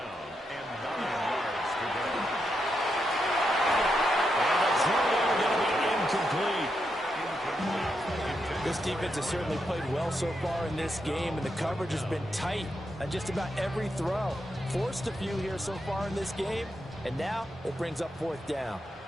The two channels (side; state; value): both; normal; correlation 0.83